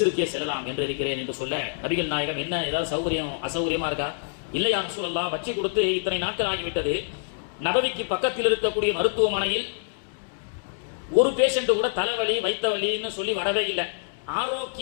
செல்லலாம் என்று இருக்கிறேன் என்று சொல்ல, நபிகள் நாயகம், என்ன ஏதாவது சௌகரியம் அசௌகரியமா இருக்கா? இல்லை யா ரசூலல்லாஹ், வச்சு கொடுத்து இத்தனை நாட்கள் ஆகிவிட்டது, நபவிக்கு பக்கத்தில் இருக்கக்கூடிய மருத்துவமனையில் ஒரு பேஷண்ட் கூட தலைவலி வைத்த வலின்னு சொல்லி வரவே இல்லை.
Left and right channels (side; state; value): right; silent; digital silence